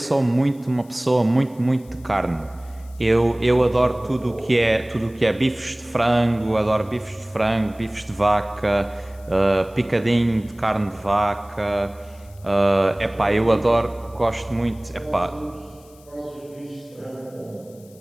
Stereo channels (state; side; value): noise; left; hiss, 28 dB below the sound